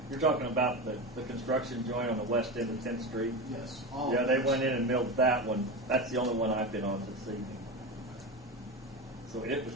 You're talking about the construction joint on the west end of 10th Street? Yes. Yeah, they went in and milled that one. That's the only one I've been on this evening. So it was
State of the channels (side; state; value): both; normal; correlation 0.22